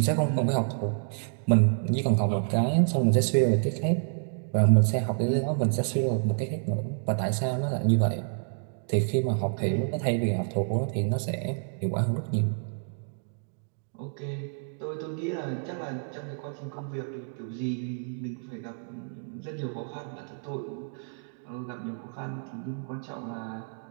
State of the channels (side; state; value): left; silent; digital silence